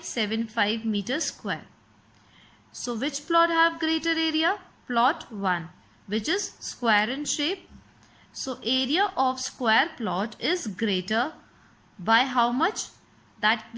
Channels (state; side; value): identical; both; correlation 1.00